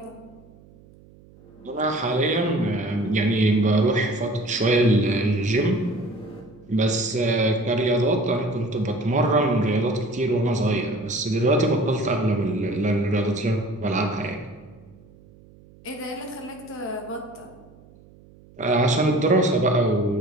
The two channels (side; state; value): right; noise; hum, 25 dB below the sound